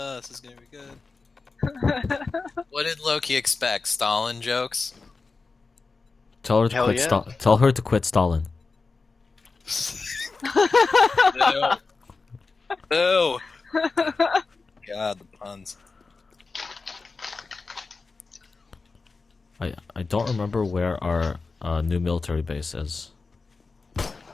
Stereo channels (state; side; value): quieter; right; 4.2 dB